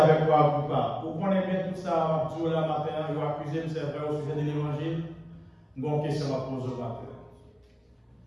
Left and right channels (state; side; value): identical; both; correlation 1.00